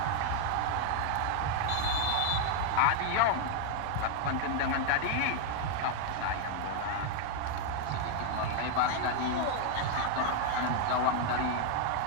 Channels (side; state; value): both; different; correlation 0.00